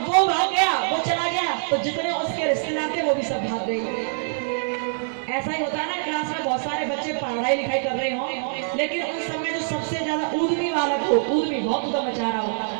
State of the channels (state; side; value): silent; left; 62 dB below the other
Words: वो भाग गया, वो चला गया, तो जितने उसके रिश्तेदार थे वो भी सब भाग गए। ऐसा ही होता है ना, क्लास में बहुत सारे बच्चे पढ़ाई लिखाई कर रहे हो, लेकिन उस समय जो सबसे ज्यादा ऊधमी बालक हो, ऊधमी बहुत उधम मचा रहा हो,